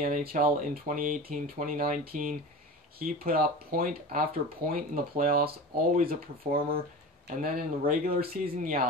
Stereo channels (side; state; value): both; normal; correlation 0.32